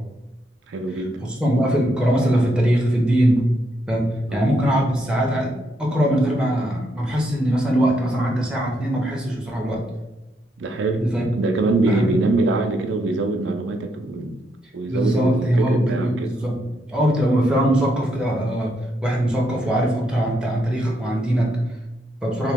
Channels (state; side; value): normal; both; correlation 0.77